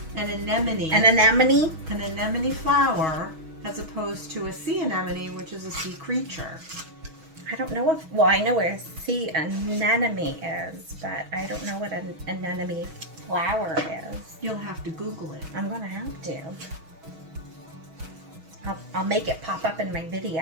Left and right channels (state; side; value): late; left; 6.3 ms